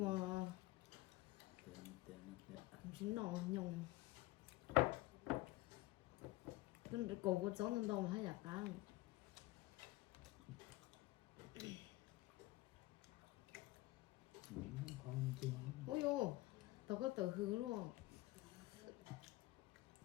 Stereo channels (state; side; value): quieter; right; 18.9 dB